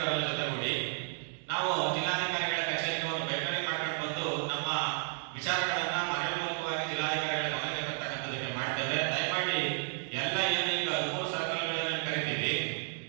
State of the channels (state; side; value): silent; left; 56 dB below the other